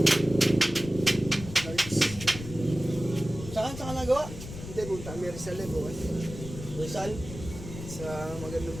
Saan ka nagawa? Hindi, punta kami Rizal eh, bukas. Rizal? Sa magandang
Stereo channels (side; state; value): left; noise; rumble, 11 dB below the sound